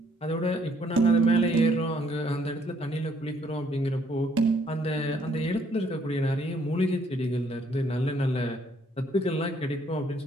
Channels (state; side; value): normal; both; correlation 0.67